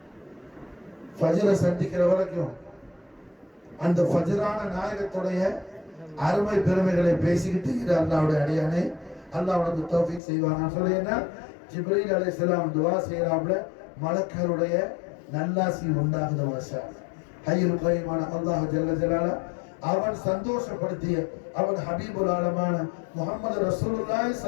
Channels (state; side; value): drops out; right; at 10.2 s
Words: ஃபஜ்ரை சந்திக்கிற வரைக்கும் அந்த ஃபஜ்ரான நாயகத்துடைய அருமை பெருமைகளை பேசிக்கிட்டு இரு அல்லாஹ்வுடைய அடியானே, அல்லாஹ் உனக்கு தௌஃபீக் செய்வானா சொல்லி என்ன ஜிப்ரீல் அலைஹிஸ்ஸலாம் துஆ செய்யறாப்ல, மலக்குகளுடைய நல்லாசி உண்டாகுது மாஷா. ஹய்யுல் கய்யூமான அல்லாஹ் ஜல்ல ஜலாலா அவன் சந்தோஷப்படுத்திய அவன் ஹபீபுல் ஆலமான முஹம்மது ரசூலுல்லாஹி